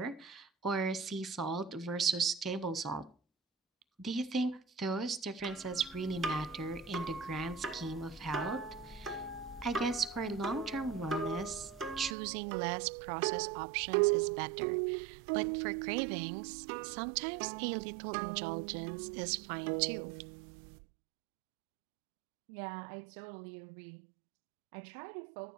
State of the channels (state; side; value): drops out; left; at 12.2 s